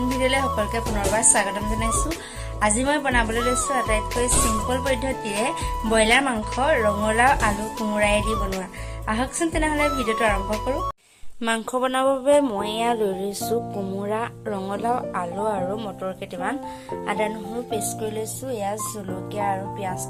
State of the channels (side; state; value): both; identical; correlation 1.00